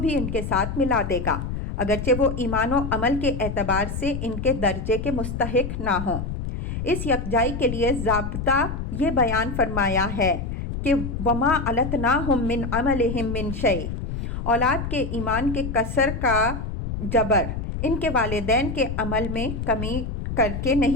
ان کے ساتھ ملا دے گا، اگرچہ وہ ایمان و عمل کے اعتبار سے ان کے درجے کے مستحق نہ ہوں۔ اس یکجائی کے لیے ضابطہ یہ بیان فرمایا ہے کہ وَمَا أَلَتْنَاهُم مِّنْ عَمَلِهِم مِّن شَيْءٍ، اولاد کے ایمان کے کسر کا جبر ان کے والدین کے عمل میں کمی کر کے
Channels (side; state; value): left; noise; rumble, 5 dB below the sound